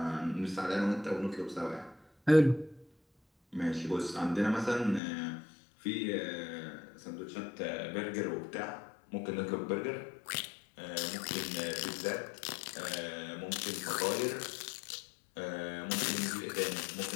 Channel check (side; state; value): right; drops out; at 5.0 s